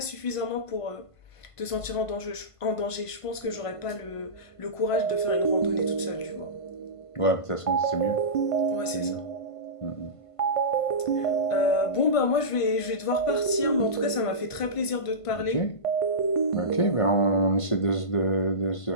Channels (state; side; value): late; right; 1.5 ms